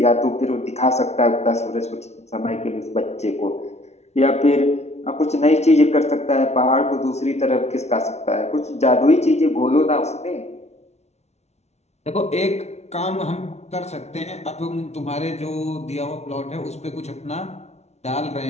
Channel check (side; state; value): right; late; 0.31 ms